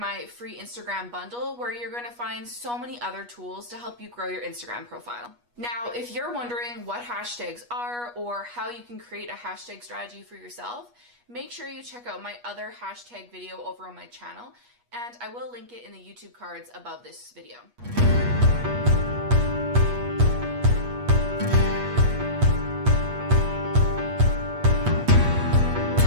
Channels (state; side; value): late; left; 8.3 ms